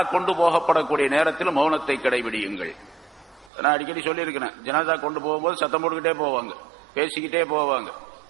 கொண்டு போகப்படக்கூடிய நேரத்திலும் மௌனத்தை கடைபிடியுங்கள். நான் அடிக்கடி சொல்லியிருக்கிறேன், ஜனாசா கொண்டு போகும்போது சத்தம் போட்டுக்கிட்டே போவாங்க, பேசிக்கிட்டே போவாங்க.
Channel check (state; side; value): drops out; left; at 3.5 s